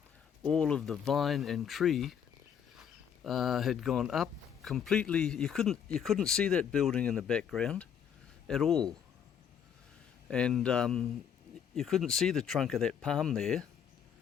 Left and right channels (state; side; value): quieter; right; 8.2 dB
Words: all of the vine and tree had gone up completely. You couldn't see that building in the background at all, and you couldn't see the trunk of that palm there